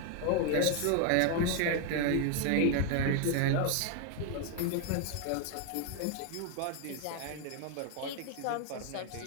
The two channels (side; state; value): both; different; correlation 0.00